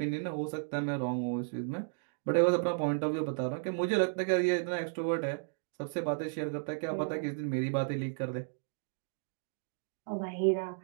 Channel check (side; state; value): left; silent; digital silence